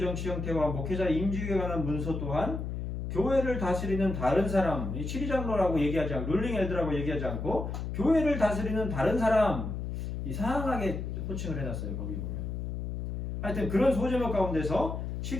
형태와 목회자 임직에 관한 문서 또한 교회를 다스리는 다른 사람, 이 7위 장로라고 얘기하지 않고 룰링 엘드라고 얘기하지 않고 교회를 다스리는 다른 사람 이상하게 호칭을 해놨어요. 거기 보면 하여튼 그런 소제목 가운데서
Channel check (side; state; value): left; noise; hum, 4 dB below the sound